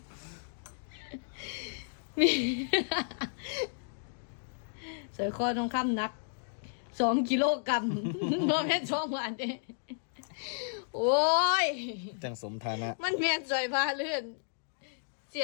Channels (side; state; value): right; silent; digital silence